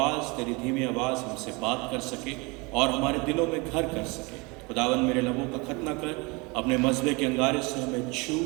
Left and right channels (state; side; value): quieter; left; 27.4 dB